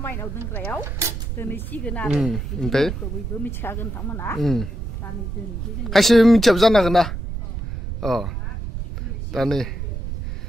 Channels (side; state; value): right; noise; rumble, 5 dB below the sound